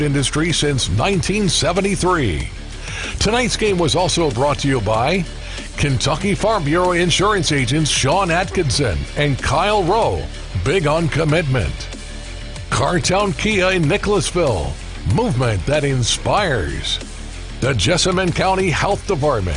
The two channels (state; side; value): identical; both; correlation 1.00